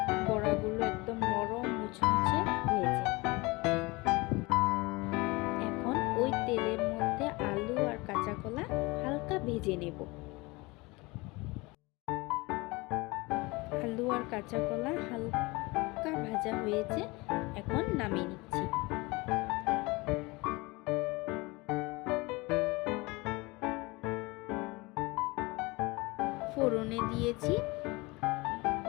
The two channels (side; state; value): right; quieter; 24.0 dB